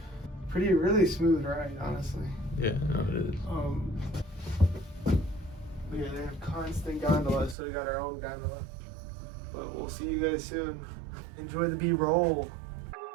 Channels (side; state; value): left; drops out; at 7.6 s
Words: Really smooth ride, honestly. Yeah, no, it is. But yeah, they have constant gondolas, so we got our own gondola. But we'll see you guys soon. Enjoy the B-roll.